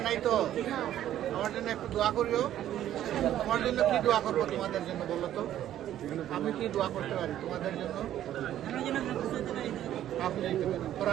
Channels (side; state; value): left; quieter; 11.9 dB